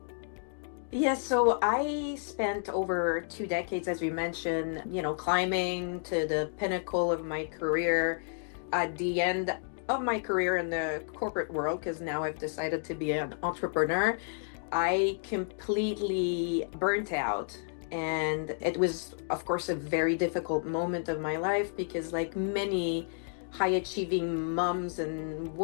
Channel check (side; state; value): right; silent; digital silence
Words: Yes, so I spent over 2 decades, as we mentioned, climbing to the pinnacle of my career. At the end of my career in the corporate world, because now I've decided to be an entrepreneur, I completely burnt out. And it was, of course, a very difficult moment of my life because, like many high-achieving moms and